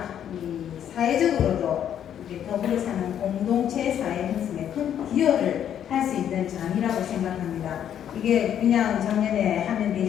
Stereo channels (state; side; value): quieter; right; 9.7 dB